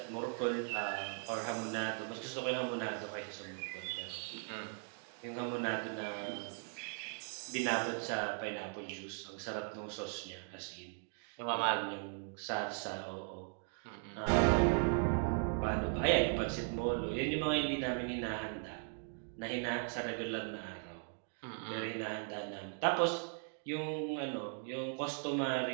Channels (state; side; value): silent; left; 52 dB below the other